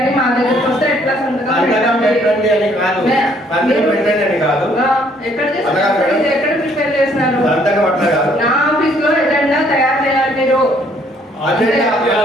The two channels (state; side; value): normal; both; correlation 0.64